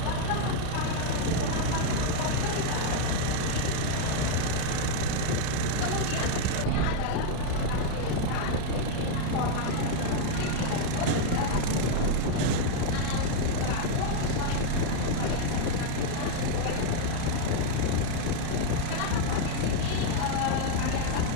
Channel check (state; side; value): different; both; correlation 0.00